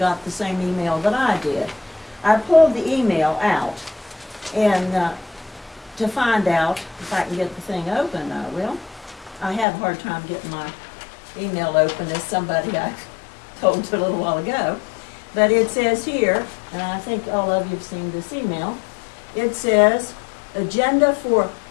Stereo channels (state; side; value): drops out; right; at 9.7 s